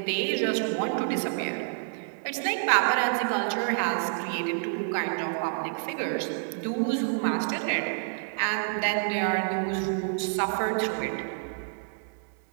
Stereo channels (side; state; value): left; silent; digital silence